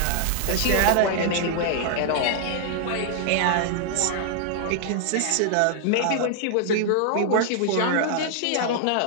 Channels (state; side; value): different; both; correlation -0.01